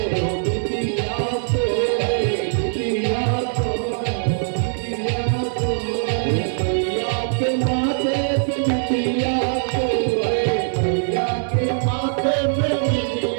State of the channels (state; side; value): silent; left; digital silence